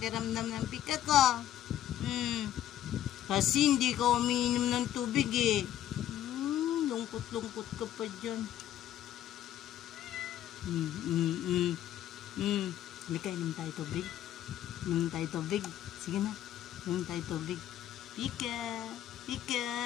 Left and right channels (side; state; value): right; quieter; 11.8 dB